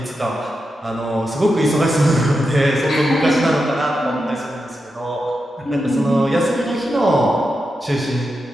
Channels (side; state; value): both; normal; correlation 0.88